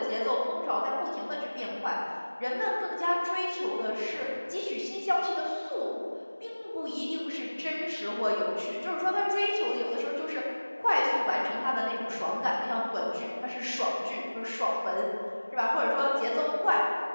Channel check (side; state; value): both; inverted; correlation -1.00